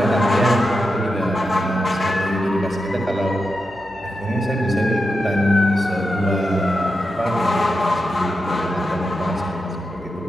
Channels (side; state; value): both; normal; correlation 0.88